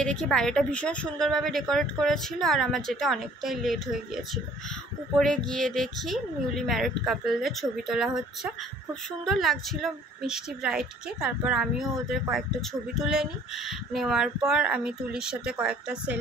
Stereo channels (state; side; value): normal; both; correlation 0.55